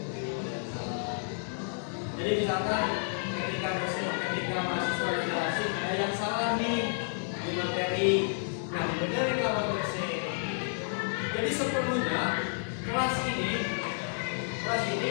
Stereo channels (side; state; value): right; silent; digital silence